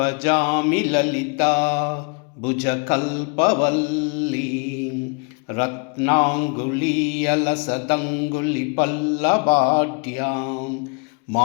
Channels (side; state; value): right; quieter; 35.8 dB